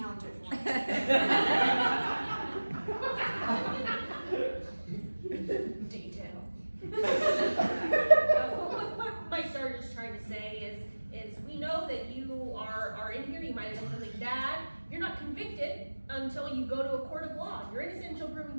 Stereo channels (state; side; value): inverted; both; correlation -1.00